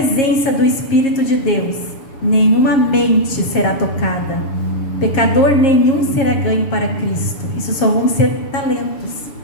do Espírito de Deus, nenhuma mente será tocada, pecador nenhum será ganho para Cristo. Isso só vão ser talentos.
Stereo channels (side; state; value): right; late; 7.4 ms